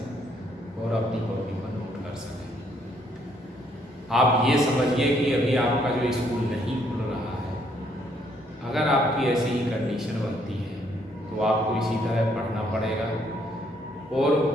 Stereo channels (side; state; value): both; normal; correlation 0.69